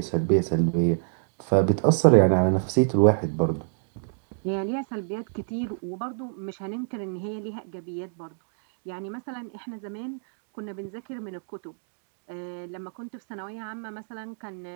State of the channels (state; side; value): silent; left; digital silence